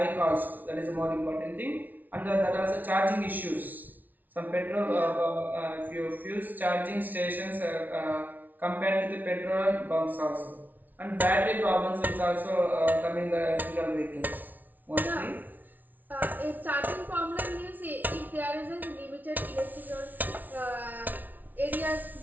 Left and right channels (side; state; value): left; late; 0.081 ms